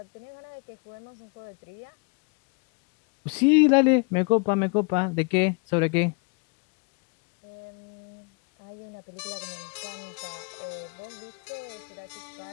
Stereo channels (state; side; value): quieter; right; 32.6 dB